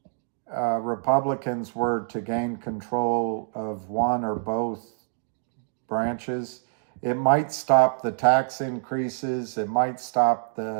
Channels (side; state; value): left; silent; digital silence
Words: Republicans were to gain control of one or both branches. It might stop the tax increases. It might stop